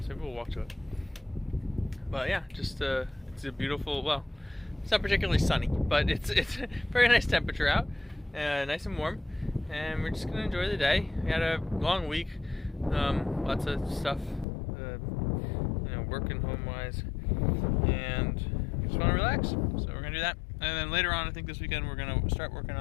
Maybe we'll walk to it. But yeah, just it's a beautiful. Well, it's not particularly sunny, but it's very nice temperature out, nice and warm, and we're just gonna enjoy the day. We had a long week, lots of stuff, working home-wise, and we just want to relax. So we're gonna do that, and then later on, I think this weekend we're gonna start working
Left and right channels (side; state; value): right; drops out; at 14.5 s